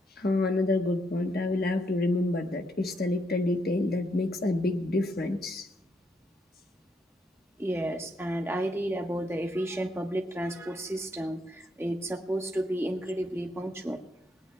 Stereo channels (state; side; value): normal; both; correlation 0.76